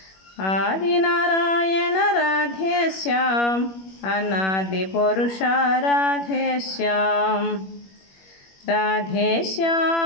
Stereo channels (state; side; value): late; right; 21 ms